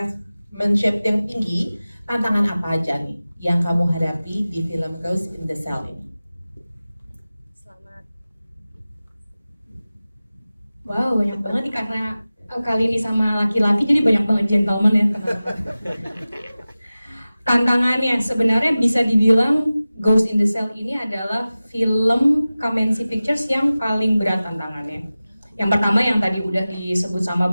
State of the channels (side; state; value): both; inverted; correlation -0.97